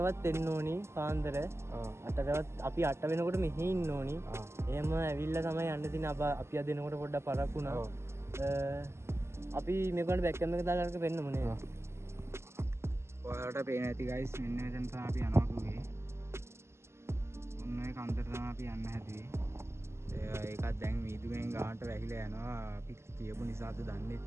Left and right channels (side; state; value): left; late; 0.13 ms